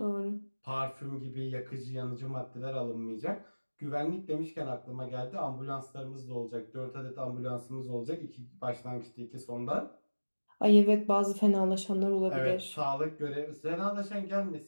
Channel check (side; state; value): both; inverted; correlation -1.00